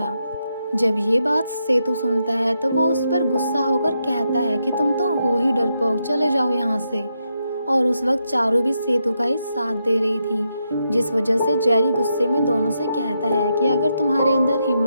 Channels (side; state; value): both; inverted; correlation -0.83